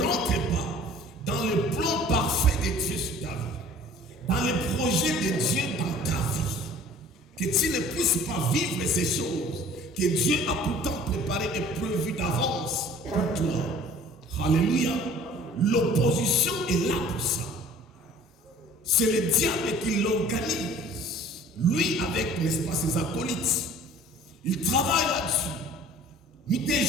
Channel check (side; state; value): both; normal; correlation 0.49